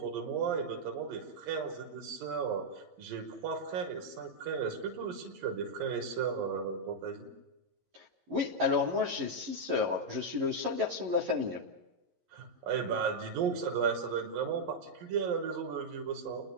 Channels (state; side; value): late; left; 11 ms